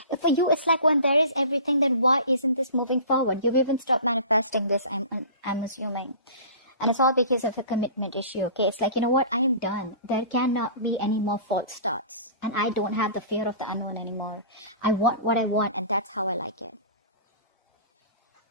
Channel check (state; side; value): inverted; both; correlation -0.40